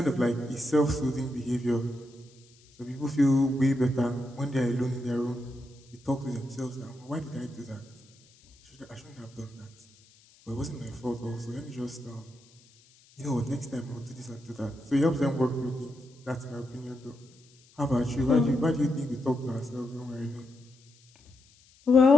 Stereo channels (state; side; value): noise; left; hiss, 29 dB below the sound